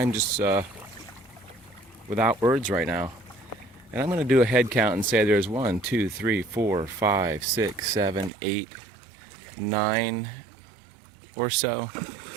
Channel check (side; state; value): left; drops out; at 8.3 s